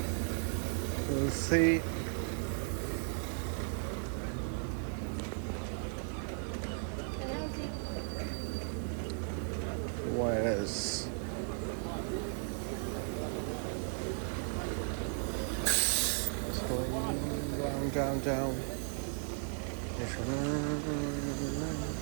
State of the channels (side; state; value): left; silent; 54 dB below the other